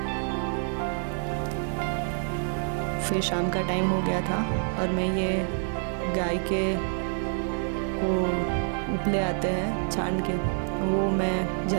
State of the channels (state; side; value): silent; left; digital silence